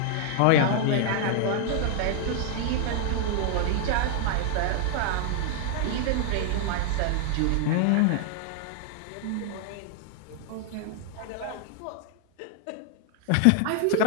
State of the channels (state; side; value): different; both; correlation 0.00